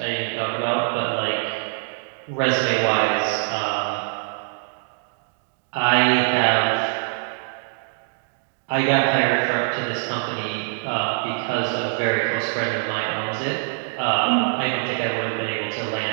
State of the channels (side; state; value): left; silent; 63 dB below the other